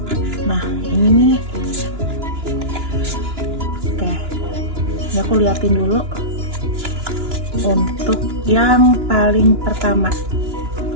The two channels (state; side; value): late; left; 2.9 ms